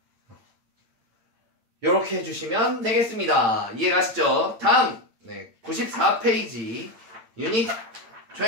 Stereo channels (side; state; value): left; late; 8.7 ms